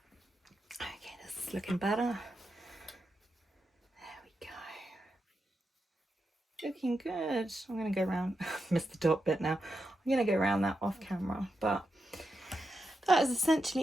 this is looking better. There we go. Looking good. I'm going to go around, missed the top bit now. I'm going to go around that off camera, but that is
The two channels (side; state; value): both; normal; correlation 0.87